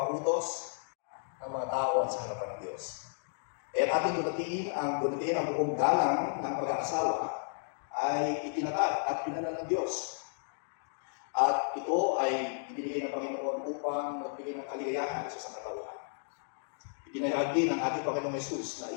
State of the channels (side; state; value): right; silent; digital silence